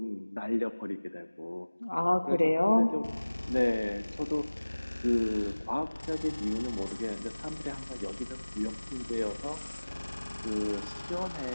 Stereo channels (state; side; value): inverted; both; correlation -1.00